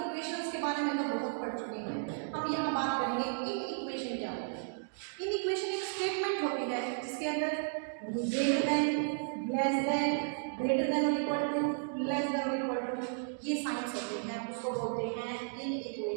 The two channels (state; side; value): silent; left; digital silence